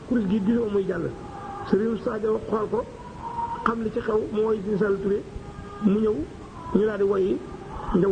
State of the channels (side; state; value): both; identical; correlation 1.00